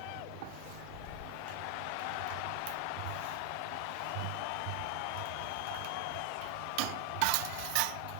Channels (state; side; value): different; both; correlation 0.01